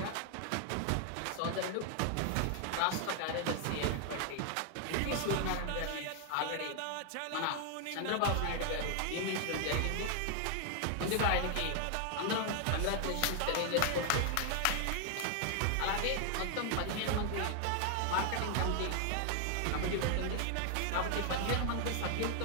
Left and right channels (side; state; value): both; different; correlation 0.00